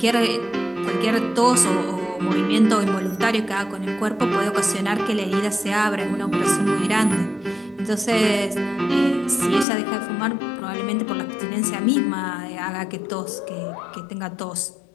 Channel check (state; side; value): drops out; right; at 9.7 s